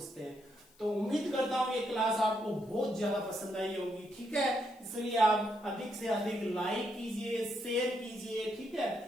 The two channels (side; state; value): left; noise; hiss, 29 dB below the sound